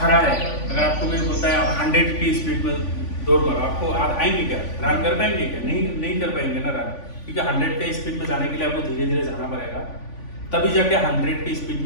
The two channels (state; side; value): late; right; 3.5 ms